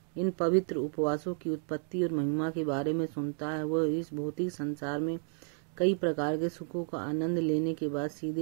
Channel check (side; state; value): left; silent; 56 dB below the other